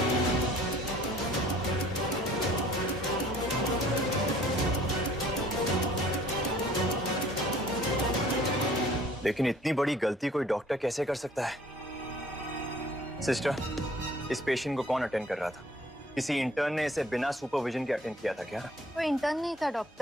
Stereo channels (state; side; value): normal; both; correlation 0.54